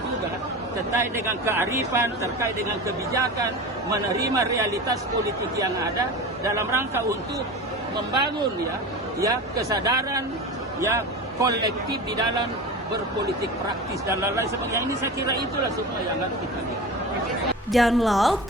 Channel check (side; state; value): both; normal; correlation 0.30